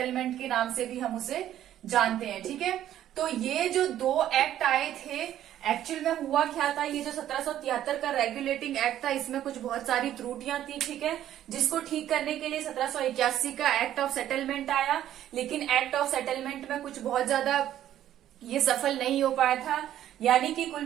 के नाम से भी हम उसे जानते हैं। ठीक है, तो ये जो दो एक्ट आए थे, एक्चुअल में हुआ क्या था, ये जो 1773 का रेगुलेटिंग एक्ट था इसमें कुछ बहुत सारी त्रुटियां थी। ठीक है, जिसको ठीक करने के लिए 1781 का एक्ट ऑफ सेटलमेंट आया। लेकिन एक्ट ऑफ सेटलमेंट में कुछ बहुत ज्यादा ये सफल नहीं हो पाया था। यानी कि कुल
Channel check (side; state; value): left; quieter; 11.8 dB